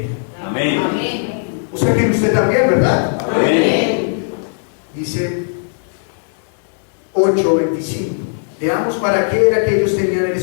Amén. O sea que en usted también, ¿verdad? Amén. Dice 8:25. Veamos para qué era que ellos tenían el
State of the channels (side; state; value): right; silent; digital silence